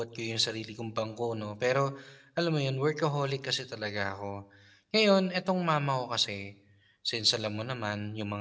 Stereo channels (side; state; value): both; identical; correlation 1.00